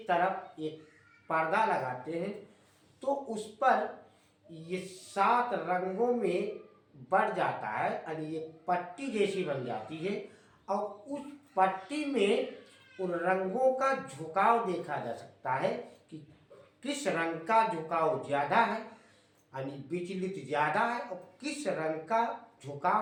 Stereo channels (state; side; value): identical; both; correlation 1.00